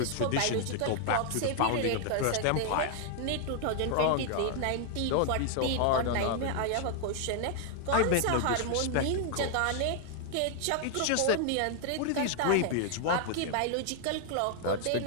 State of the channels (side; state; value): both; different; correlation 0.00